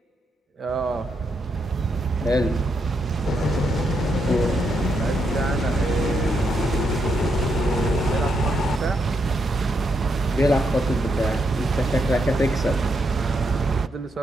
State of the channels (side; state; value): both; normal; correlation 0.80